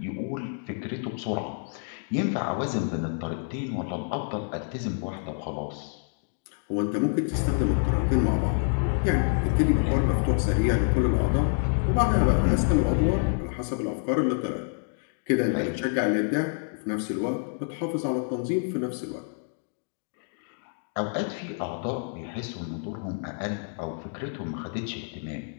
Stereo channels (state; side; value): silent; right; 60 dB below the other